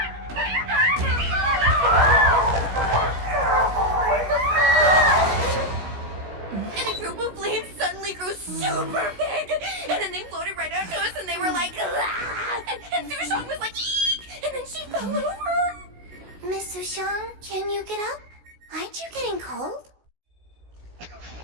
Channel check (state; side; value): late; left; 17 ms